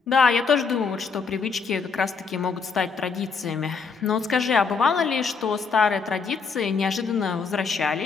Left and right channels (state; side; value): quieter; right; 5.2 dB